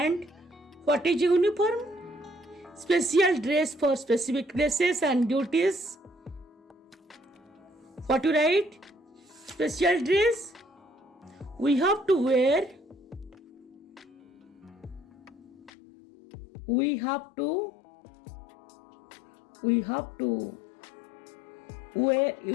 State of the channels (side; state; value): right; drops out; at 15.7 s